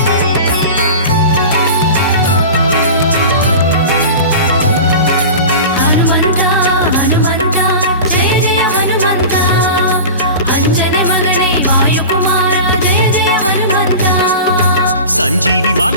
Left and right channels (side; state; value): both; inverted; correlation -0.32